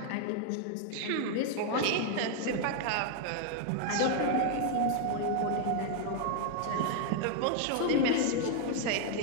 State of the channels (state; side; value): different; both; correlation 0.00